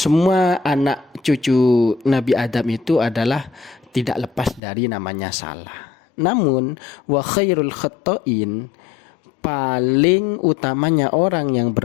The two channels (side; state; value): right; drops out; at 4.6 s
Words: anak cucu Nabi Adam itu adalah tidak lepas dari namanya salah. Namun wa khairul khatta'in, paling utamanya orang yang